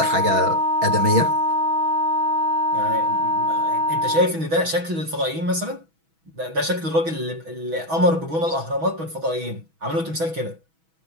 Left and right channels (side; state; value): left; late; 6.1 ms